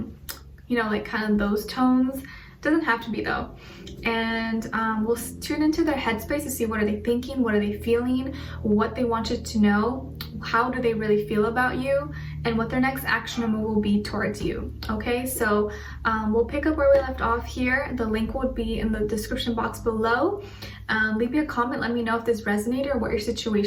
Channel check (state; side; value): identical; both; correlation 1.00